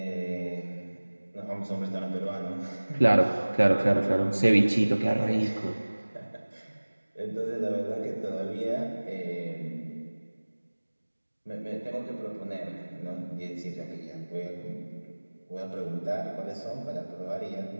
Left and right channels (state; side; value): inverted; both; correlation -1.00